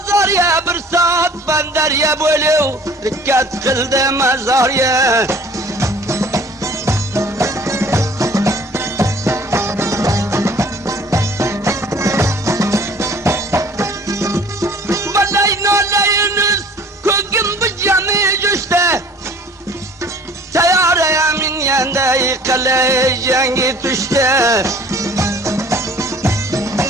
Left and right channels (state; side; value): normal; both; correlation 0.51